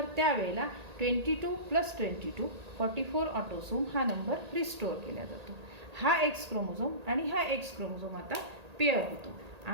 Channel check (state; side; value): late; left; 1.8 ms